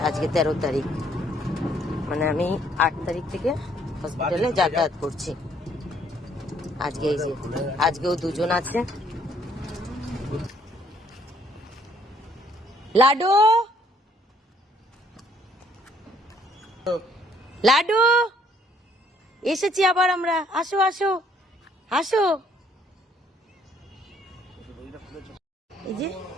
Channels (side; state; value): both; normal; correlation 0.64